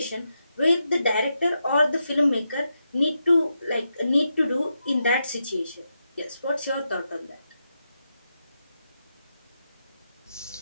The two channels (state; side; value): inverted; both; correlation -0.86